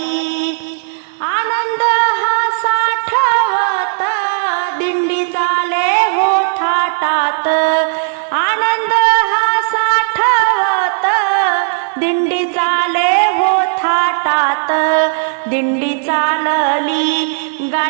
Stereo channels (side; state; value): left; silent; digital silence